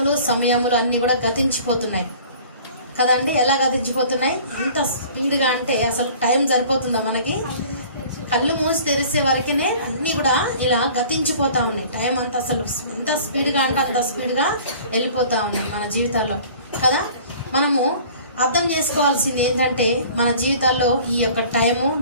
సమయములు అన్ని కూడా గతించిపోతున్నాయి కదండి. ఎలా గతించిపోతున్నాయి? ఎంత స్పీడ్గా అంటే అసలు టైం సరిపోతుందా మనకి? కళ్ళు మూసి తెరిసే వరకునే అన్నీ కూడా ఇలా గతించిపోతా ఉన్నాయి. టైం అంతా అసలు ఎంత స్పీడ్గా అంటే అంత స్పీడ్గా వెళ్ళిపోతా ఉన్నాయి మన జీవితాల్లో కదా. మనము అర్థం చేసుకోవాల్సింది ఏంటంటే మన జీవితాల్లో ఈ యొక్క టైము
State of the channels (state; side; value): inverted; both; correlation -0.47